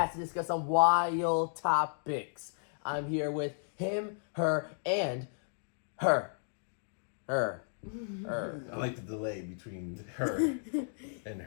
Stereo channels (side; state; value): right; silent; digital silence